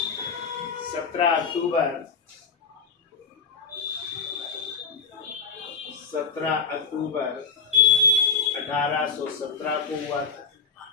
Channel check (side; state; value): right; quieter; 5.1 dB